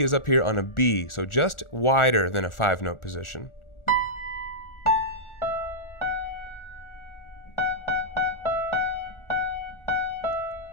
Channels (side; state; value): right; late; 1.4 ms